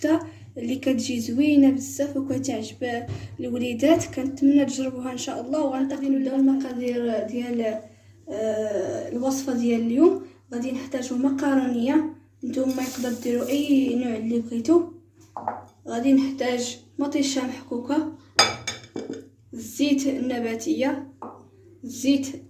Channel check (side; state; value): both; identical; correlation 1.00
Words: اللي كتجي زوينه بزاف وكتعجب الوليدات. كنتمنى تجربوها ان شاء الله. وغنبداو نبداو المقادير ديال الوصفه ديال اليوم. غادي نحتاجو مقارونيه، نتوما يقدر ديروا اي نوع اللي بغيتو. غادي نحتاج مطيشه محكوكه، الزيت النباتيه، الزيت